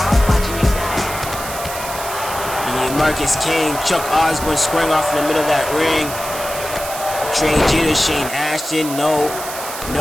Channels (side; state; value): right; noise; hiss, 9 dB below the sound